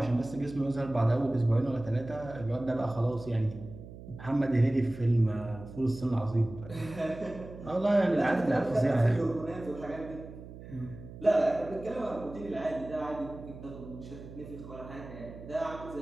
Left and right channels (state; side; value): noise; right; hum, 14 dB below the sound